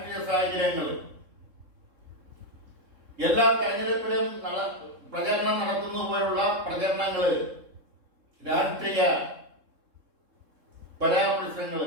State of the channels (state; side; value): late; left; 3.7 ms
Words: സാഹചര്യങ്ങൾ എല്ലാ തെരഞ്ഞെടുപ്പിലും പ്രചരണം നടത്തുന്ന പോലുള്ള പ്രചരണങ്ങൾ, രാഷ്ട്രീയ പരാമർശങ്ങൾ,